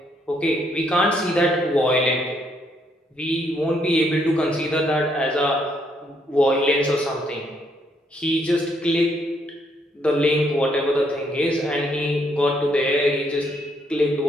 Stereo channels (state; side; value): normal; both; correlation 0.72